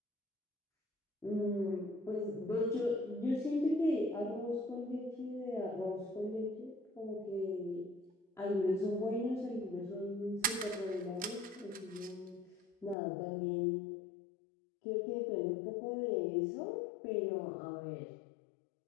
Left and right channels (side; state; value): right; drops out; at 13.0 s